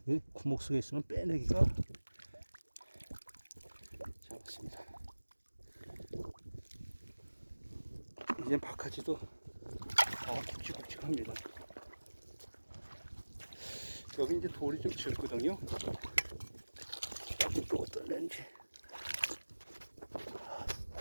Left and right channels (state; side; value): inverted; both; correlation -1.00